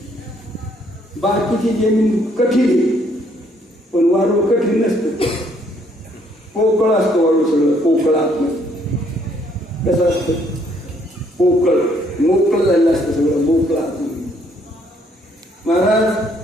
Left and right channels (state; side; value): normal; both; correlation 0.67